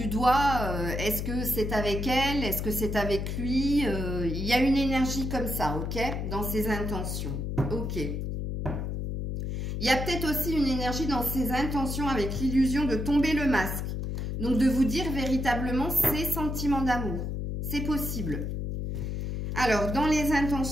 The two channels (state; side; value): noise; left; hum, 3 dB below the sound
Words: doigt, est-ce que c'est avec elle, est-ce que c'est avec lui, il y a une énergie comme ça, ok, dans ses intentions, ok. Il y a peut-être aussi une énergie dans ses intentions avec l'illusion de tomber le masque, donc de vous dire véritablement ses sentiments d'amour, c'est possible. Alors, dans les